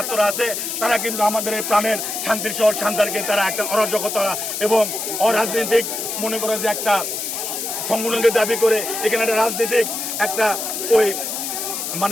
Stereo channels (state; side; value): noise; left; hiss, 4 dB below the sound